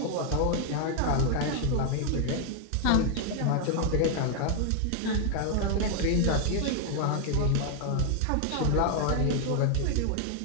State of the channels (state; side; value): different; both; correlation 0.00